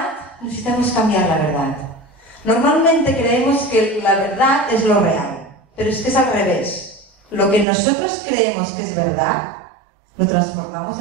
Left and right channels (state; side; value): drops out; left; at 7.7 s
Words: necesitamos cambiar la verdad. Normalmente creemos que la verdad es lo real, pero es que es al revés. Lo que nosotros creemos que es verdad, lo transformamos